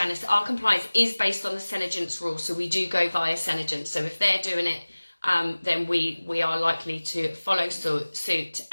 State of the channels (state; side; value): inverted; both; correlation -1.00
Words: Our compliance is based on the Senegent's rule, so we do go via Senegent. So if they're doing it, then we are likely to follow suit